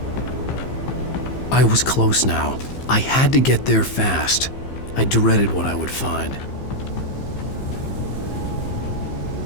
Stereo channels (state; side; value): late; right; 15 ms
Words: I was close now. I had to get there fast. I dreaded what I would find.